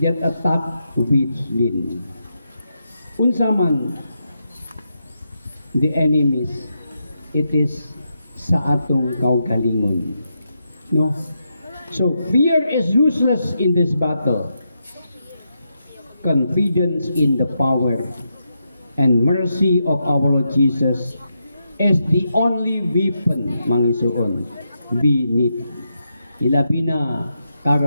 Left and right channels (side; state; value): both; inverted; correlation -0.84